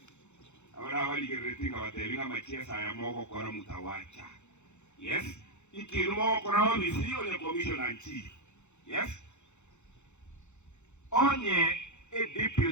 ahora waligeretinga watebinga machiesa ya moko kora mutawacha. Yes, ikiru moko kora obisi onye commissioner chief. Yes, onye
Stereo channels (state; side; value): late; right; 0.83 ms